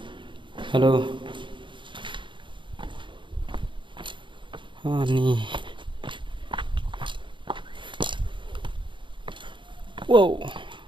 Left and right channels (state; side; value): late; left; 0.23 ms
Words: halo ni wow